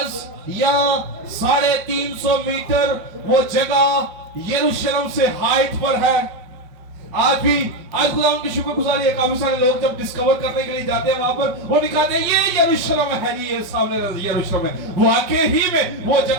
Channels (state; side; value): late; left; 5.1 ms